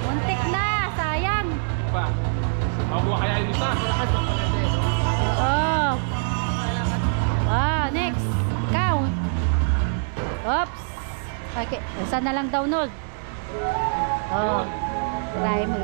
Muntik na. Sayang. Pa. Mabuha kaya yung isa. Oh. Ah, next. Count. Oops. Okay. Isa na lang download. Oh. Try mo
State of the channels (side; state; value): left; silent; digital silence